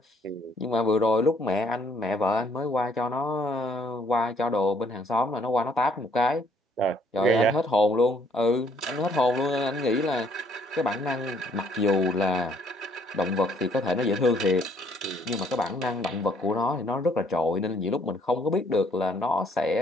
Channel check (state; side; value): normal; both; correlation 0.65